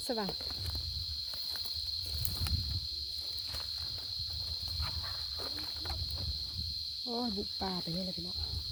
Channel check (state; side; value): identical; both; correlation 1.00